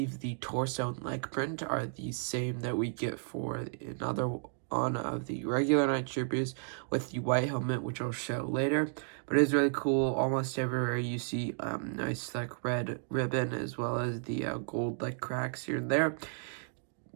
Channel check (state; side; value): silent; left; digital silence